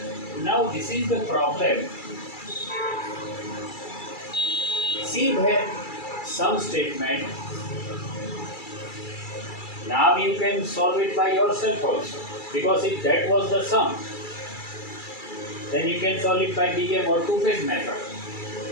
Now this is the problem. See there some statement. Now you can solve it by yourself also, because if that was the sum, then you can solve it by BM or two-phase method.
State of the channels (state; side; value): late; right; 2.3 ms